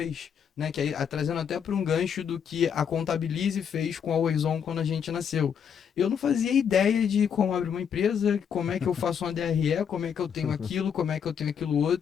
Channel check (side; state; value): right; quieter; 7.6 dB